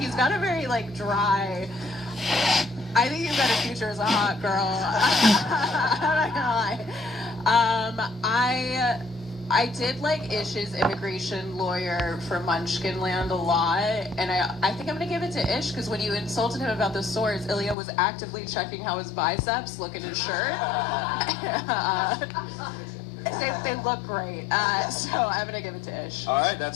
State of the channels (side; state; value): right; drops out; at 17.8 s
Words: got a very like dry, I think you've got a future as a hot girl. I'm not gonna lie. I did like Ish's immigration lawyer for Munchkinland a lot, and I think I'm gonna give it to Ish because when you insulted him about the swords, Ilya was actively checking how his biceps look in his shirt. They look great, so I'm gonna give it to Ish. All right,